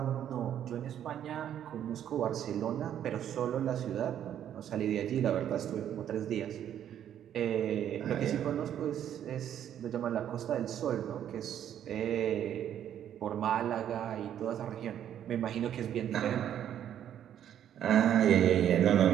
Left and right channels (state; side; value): quieter; left; 10.2 dB